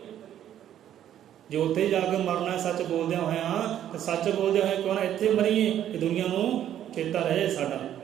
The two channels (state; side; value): quieter; left; 10.9 dB